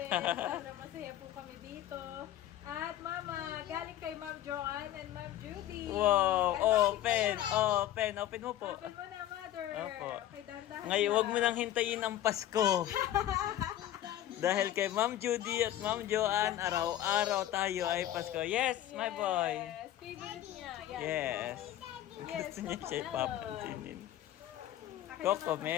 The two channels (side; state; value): right; quieter; 12.8 dB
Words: Sana masaya po kami dito. At Mama, galing kay Ma'am Joanne and Ma'am Judy. Wow, At open, bakit kaya? open mo po. Open mo na, Mother. Opo. Okay, dahan-dahan Ngayon, lang. wag mo nang hintayin ang Pasko. Dahil kay Ma'am Judy at Ma'am Joanne, araw-araw tayo ay Pasko. Yes, my boy. Yes, favorite niya. Yan. Yes. Yes, Gusto niya siya ipapansinin. Akin Coco naman.